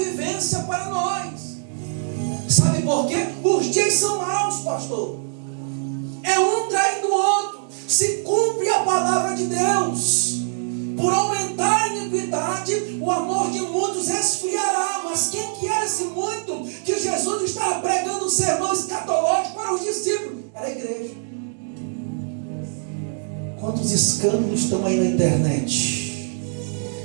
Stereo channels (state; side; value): silent; left; digital silence